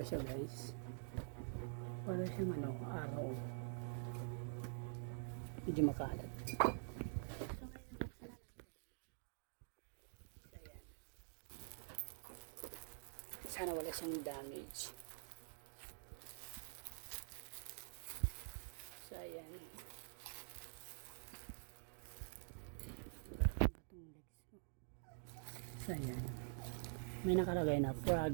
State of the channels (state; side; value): silent; left; digital silence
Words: siya guys? Para siyang araw, medyo makalat. Sana wala siyang damage. So ayan, so ayan, may nakalagay na